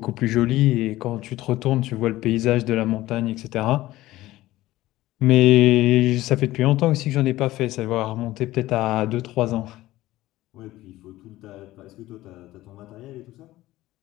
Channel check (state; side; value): quieter; right; 16.6 dB